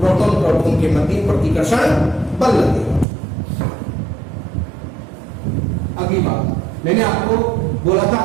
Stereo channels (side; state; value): left; drops out; at 3.1 s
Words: प्रोटॉन के मध्य प्रतिकर्षण बल लगेगा। अगली बात, मैंने आपको बोला था